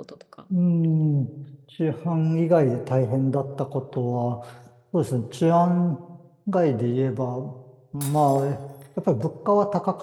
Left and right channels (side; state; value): both; identical; correlation 1.00